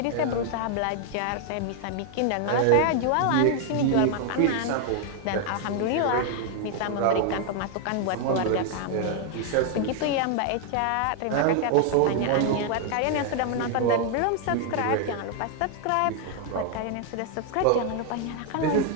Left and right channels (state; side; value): different; both; correlation 0.00